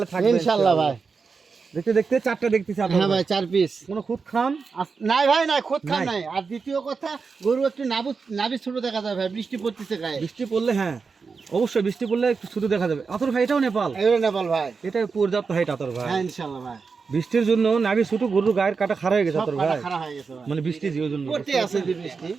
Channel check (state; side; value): quieter; left; 5.0 dB